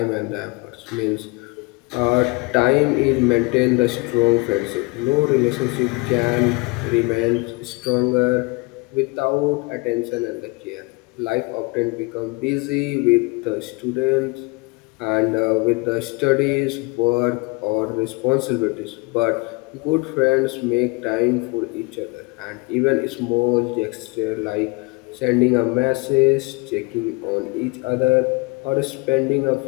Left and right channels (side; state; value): right; quieter; 26.7 dB